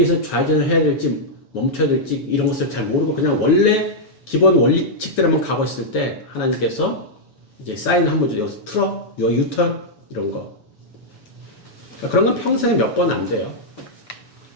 좌회전을 해야 될지 멈춰야 될지 이런 것을 잘 모르고 그냥 원래 기본 원리칙대로만 가고 있을 때 하나님께서 이제 사인 한번 줘. 여기서 틀어, 유턴 이런 거. 그러니까 그런 건 평생에 몇 번 안 돼요.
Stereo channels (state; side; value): late; right; 7.0 ms